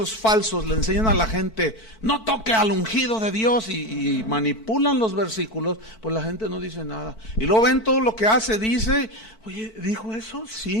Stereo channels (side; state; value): right; late; 4.5 ms